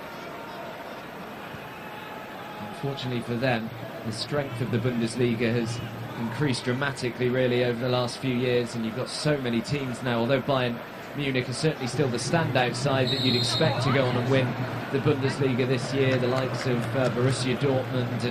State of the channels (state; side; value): identical; both; correlation 1.00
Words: Unfortunately for them, the strength of the Bundesliga has increased dramatically, really, over the last few years, and you've got so many teams now. Although Bayern Munich is certainly still the standout side that you'd expect to go on and win the Bundesliga this year, the likes of Borussia Dortmund